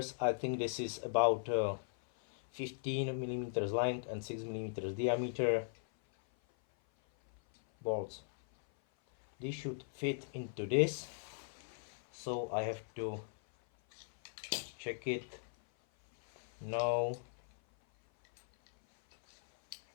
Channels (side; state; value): right; silent; 52 dB below the other